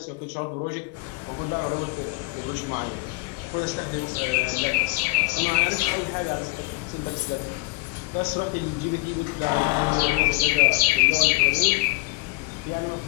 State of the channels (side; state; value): right; quieter; 21.7 dB